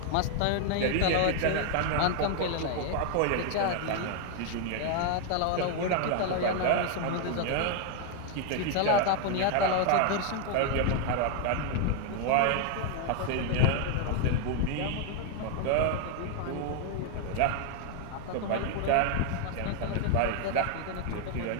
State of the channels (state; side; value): different; both; correlation 0.00